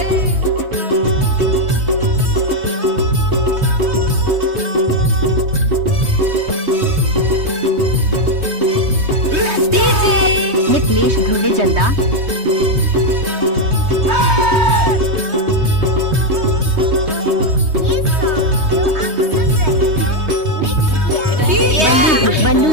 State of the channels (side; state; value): left; late; 3.2 ms